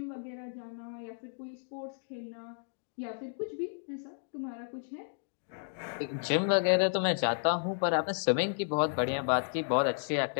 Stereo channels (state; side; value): silent; right; digital silence